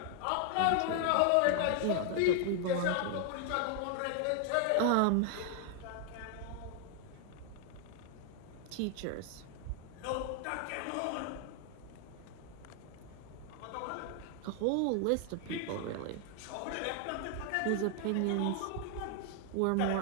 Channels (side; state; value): both; different; correlation 0.00